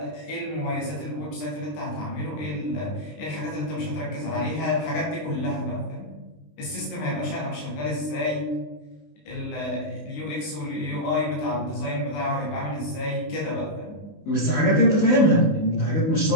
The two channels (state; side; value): late; right; 19 ms